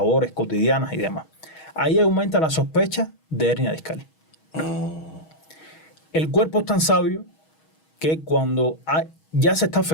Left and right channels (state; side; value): late; right; 6.3 ms